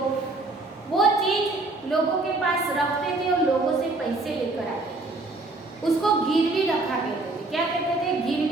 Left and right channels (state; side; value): quieter; left; 3.1 dB